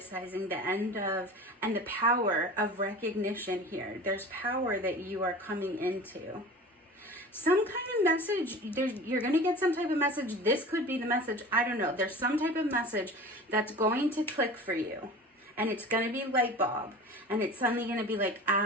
the end of, and the power of recognition here. There's power that you are coming into. Some kind of message, you're going to get some type of message. This could be the message. I don't know. There's some type of message that's going to click for you. And it's going to be light bulb. And it's suddenly going to be like,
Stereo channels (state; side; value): normal; both; correlation 0.38